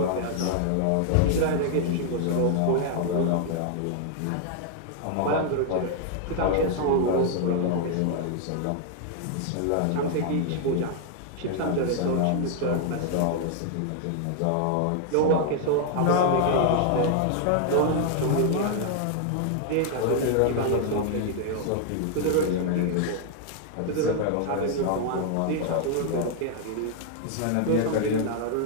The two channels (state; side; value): different; both; correlation 0.00